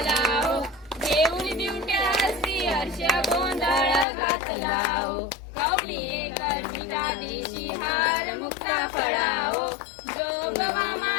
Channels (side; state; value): right; drops out; at 4.0 s